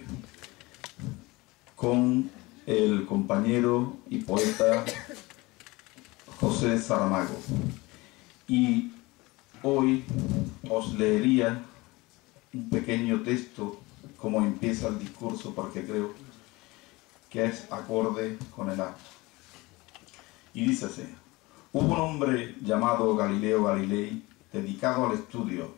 con el compañero y poeta José Saramago. Y hoy os leería un pequeño texto como empieza el discurso, porque creo que es acorde con el acto. Y dice así: hubo un hombre llamado Galileo Galilei, dedicado al estudio,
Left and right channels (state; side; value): quieter; right; 22.3 dB